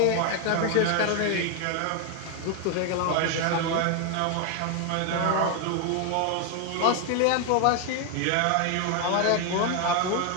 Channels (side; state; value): both; different; correlation 0.00